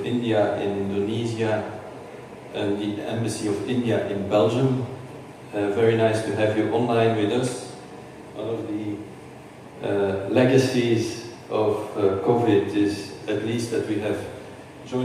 India in Indonesia, and the Embassy of India in Belgium. Very nice to have you online with us. One of the legacies of COVID is at least that we have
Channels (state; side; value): identical; both; correlation 1.00